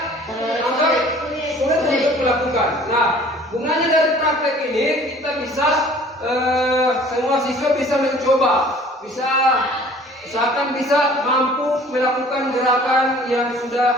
anggap sulit untuk melakukan. Nah, gunanya dari praktek ini kita bisa semua siswa bisa mencoba, usahakan bisa mampu melakukan gerakan yang sudah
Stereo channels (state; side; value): normal; both; correlation 0.51